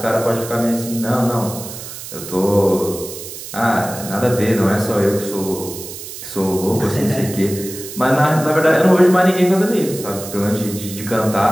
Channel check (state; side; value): noise; right; hiss, 11 dB below the sound